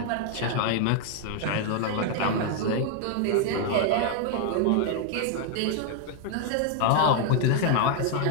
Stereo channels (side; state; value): both; different; correlation 0.00